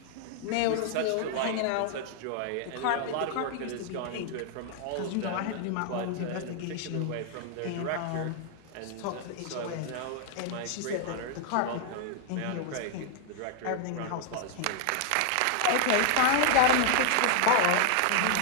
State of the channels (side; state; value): both; different; correlation 0.00